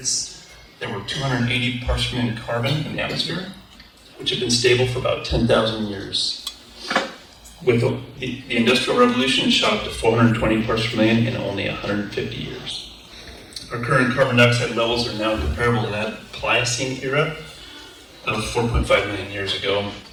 there were 280 parts per million carbon in the atmosphere, which had been stable for about 10,000 years. With the Industrial Revolution, it shot up to 420 parts per million in only 150 years. Our current carbon dioxide levels are now comparable to that Pliocene era of 4.5 million years ago,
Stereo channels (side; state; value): both; identical; correlation 1.00